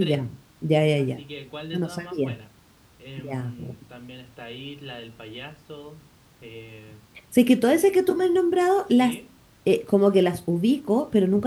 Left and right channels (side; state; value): both; identical; correlation 1.00